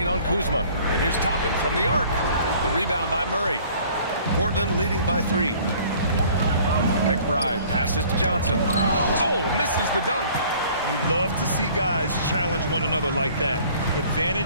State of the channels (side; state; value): both; inverted; correlation -0.53